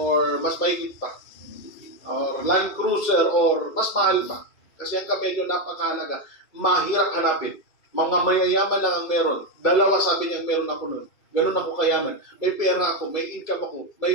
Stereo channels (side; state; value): right; late; 2.3 ms